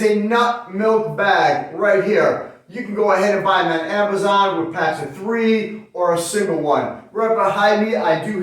a nut milk bag right here. You can go ahead and buy them on Amazon with packs of 3 or a single one. Right behind me, I do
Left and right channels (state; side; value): identical; both; correlation 1.00